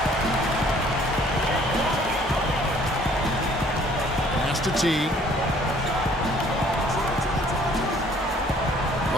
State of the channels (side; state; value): both; normal; correlation 0.58